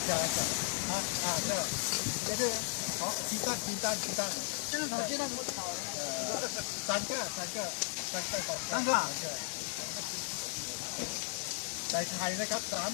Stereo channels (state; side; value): silent; right; 54 dB below the other